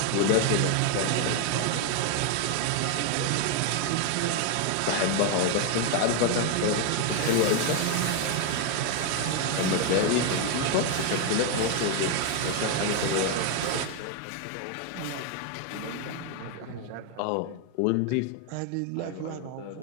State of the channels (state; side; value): different; both; correlation 0.01